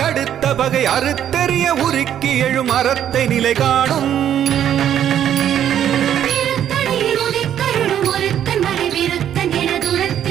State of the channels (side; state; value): left; quieter; 10.2 dB